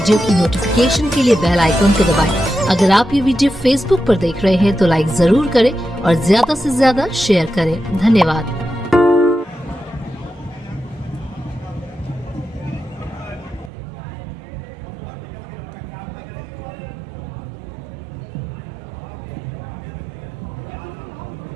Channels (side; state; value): left; drops out; at 13.7 s